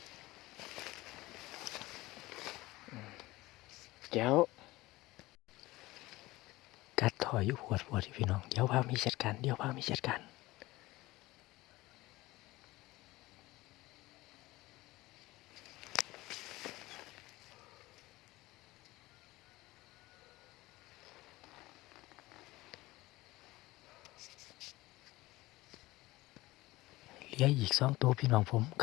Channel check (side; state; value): right; quieter; 19.3 dB